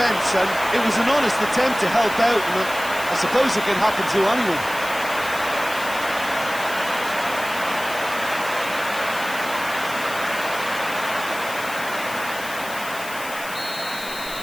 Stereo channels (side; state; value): left; noise; hiss, 12 dB below the sound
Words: and it was an honest attempt to help out, and I suppose it can happen to anyone.